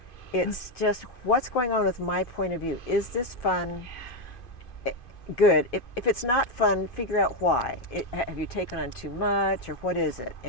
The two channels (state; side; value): late; right; 2.5 ms